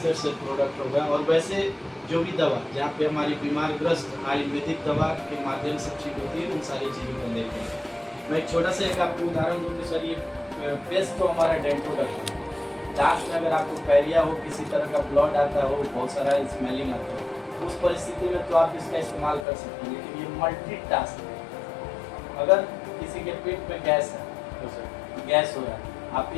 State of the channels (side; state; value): right; drops out; at 19.5 s